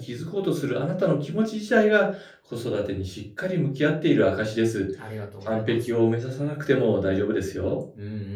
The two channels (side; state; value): both; identical; correlation 1.00